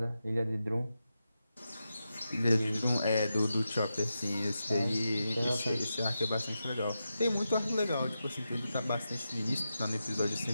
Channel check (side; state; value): both; inverted; correlation -0.89